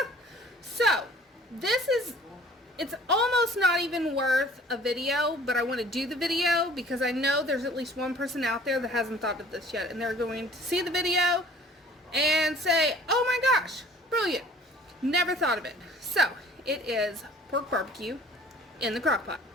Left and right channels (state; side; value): normal; both; correlation 0.51